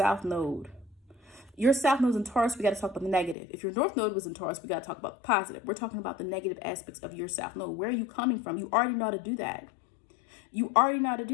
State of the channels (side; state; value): right; drops out; at 3.4 s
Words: Node. Your South Node is in Taurus, we got to talk about the negative. If your North Node was in Taurus, we got to talk about the positive. We're talking about the negative aspects of your South Node. Where are you coming from? You already know how to do that. You already know how to